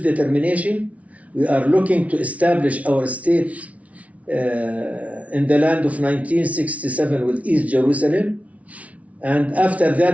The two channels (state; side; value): late; left; 0.066 ms